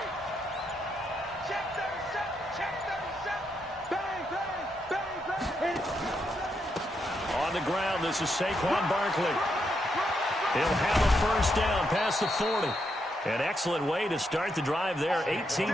Check 37, check 37. Bang, bang, bang, bang. On the ground, this is Saquon Barkley. He'll have a first down past the 40. An excellent way to start the drive there,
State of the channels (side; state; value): both; normal; correlation 0.80